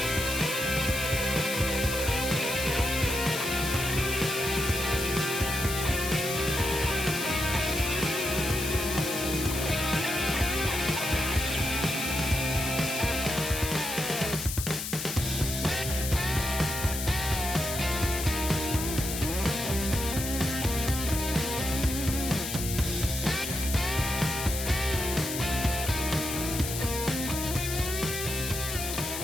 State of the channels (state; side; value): noise; left; hiss, 5 dB below the sound